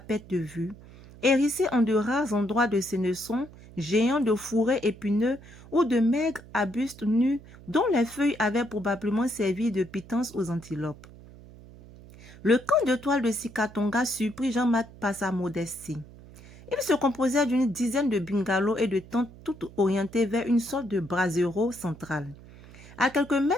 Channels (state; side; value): noise; right; hum, 20 dB below the sound